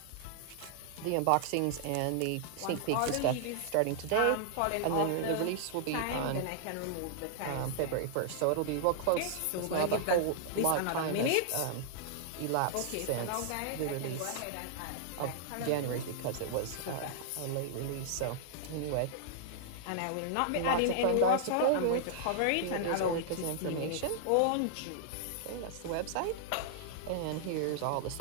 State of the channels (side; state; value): both; different; correlation -0.01